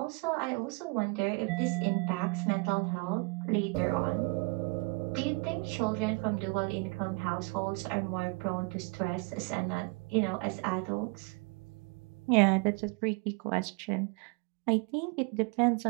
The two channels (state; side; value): quieter; left; 29.9 dB